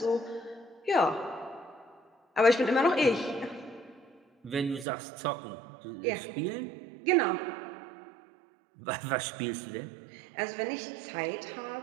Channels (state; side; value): drops out; left; at 4.9 s